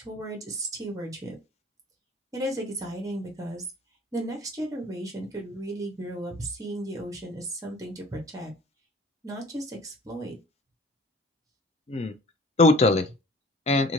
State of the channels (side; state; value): both; normal; correlation 0.49